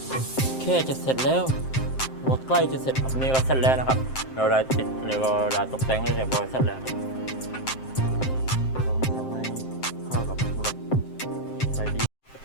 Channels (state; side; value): late; right; 7.6 ms